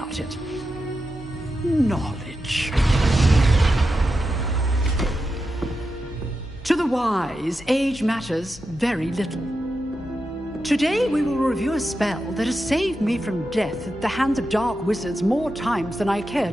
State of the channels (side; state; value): both; normal; correlation 0.89